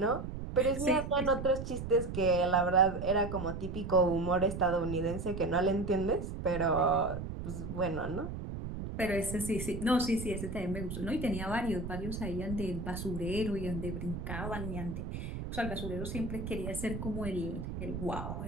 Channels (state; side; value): noise; right; rumble, 6 dB below the sound